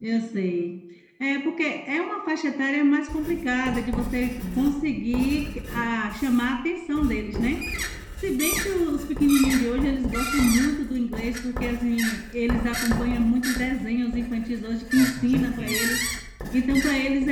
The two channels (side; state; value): both; identical; correlation 1.00